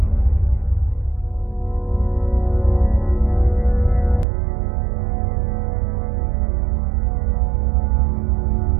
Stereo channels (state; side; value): drops out; left; at 4.2 s